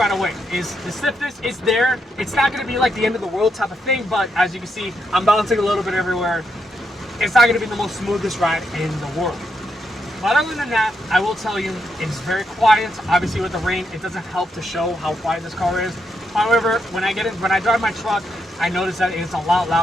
away is the stiffness is there. It's not going to be like the end of the world type of thing, but as you can see, I'm bouncing a little bit everywhere. It's not going to be the most smoothest ride in the world. But other than that, I will tell you, it's very quiet. Obviously with the rain, it doesn't help to show how quiet this car is. However, when I drive my truck, I notice that it's a lot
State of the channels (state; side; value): normal; both; correlation 0.81